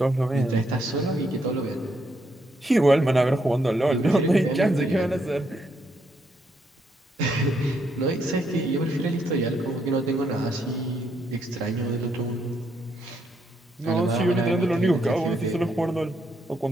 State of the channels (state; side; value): normal; both; correlation 0.76